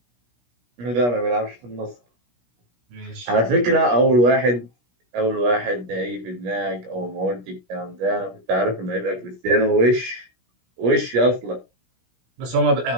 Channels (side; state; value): left; late; 17 ms